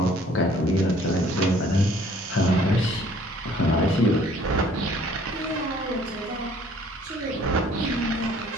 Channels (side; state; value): both; normal; correlation 0.56